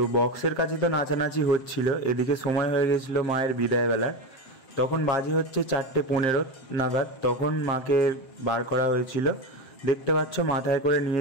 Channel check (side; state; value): right; late; 7.6 ms